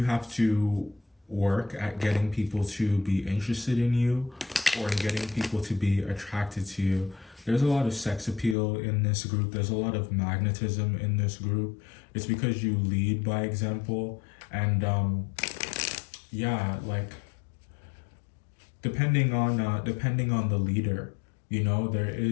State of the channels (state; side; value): drops out; right; at 8.6 s